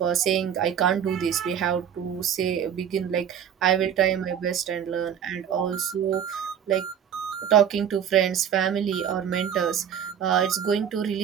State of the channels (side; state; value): left; quieter; 8.7 dB